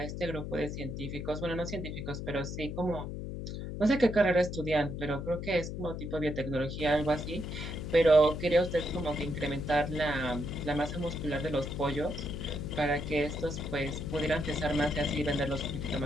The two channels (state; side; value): noise; left; hum, 6 dB below the sound